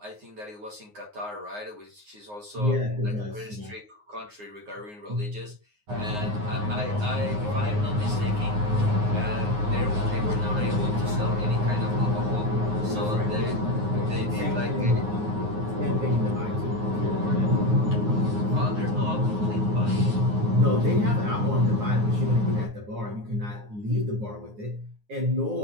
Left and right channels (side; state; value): left; late; 9.6 ms